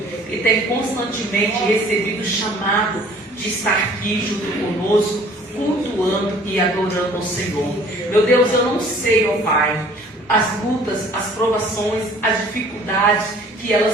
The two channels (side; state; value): both; normal; correlation 0.53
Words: que tem constantemente recebido o chamado de estar aqui junto conosco, cultuando e adorando ao Senhor. Meu Deus, eu não sei, ó Pai, as lutas, as provações, as dificuldades que